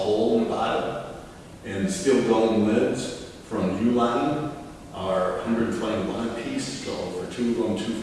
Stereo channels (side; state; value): both; identical; correlation 1.00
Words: in the bottom. And steel dome lids from Uline are $121 a piece, so for two of them,